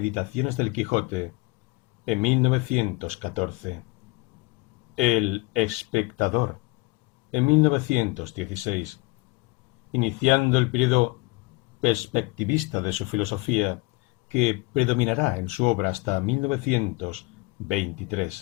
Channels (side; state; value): right; quieter; 24.1 dB